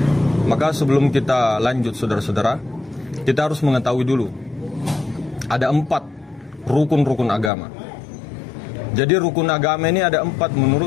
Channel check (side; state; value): right; drops out; at 7.5 s